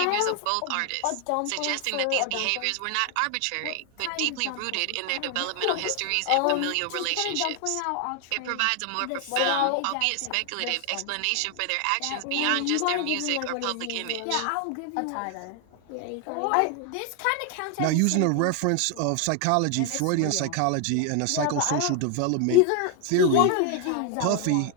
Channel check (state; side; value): different; both; correlation 0.00